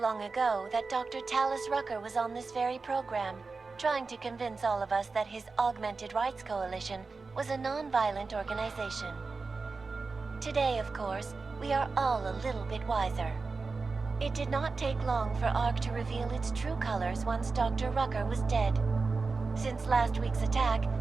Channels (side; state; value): left; quieter; 4.2 dB